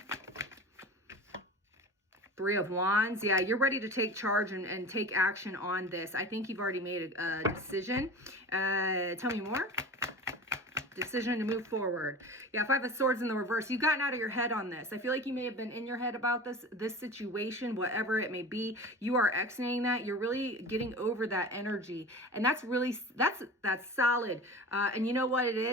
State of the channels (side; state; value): both; normal; correlation 0.35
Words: Three of Wands. Yeah, you're ready to take charge and take action on this. I think you've already made a decision. Tell me more. Decision to move forward. Yeah, Five of Swords in the reverse. You've gotten out of your head on this. I feel like you may have been in your head about this situation, whatever it may be. You are exiting that. You're really getting over that energy. And that's really, that's solid. And you know what it